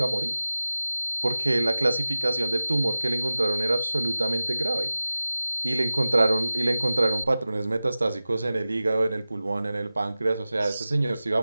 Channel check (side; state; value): both; inverted; correlation -0.96